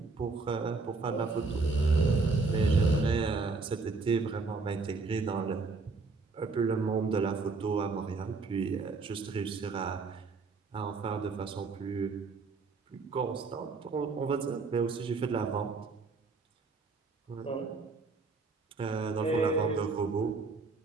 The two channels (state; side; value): quieter; left; 4.1 dB